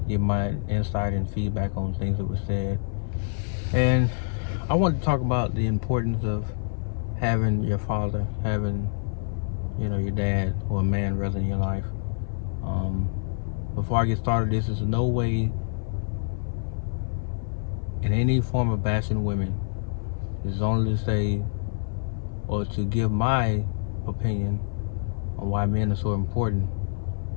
give my insight and feedback on things that were said. And I wanted to talk about the importance of having your father, having, your dad or a man rather in your life. Before I get started, this is no way in any form of bashing women. It's only to say, or to give my opinion on why men are so important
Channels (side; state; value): right; silent; 60 dB below the other